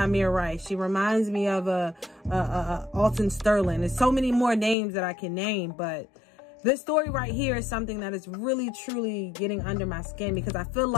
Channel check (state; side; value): drops out; right; at 4.8 s